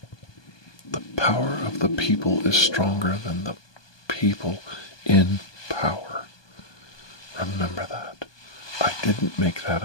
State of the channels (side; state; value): right; late; 1.2 ms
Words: The power of the people is stronger than the people in power. Remember that. I didn't make that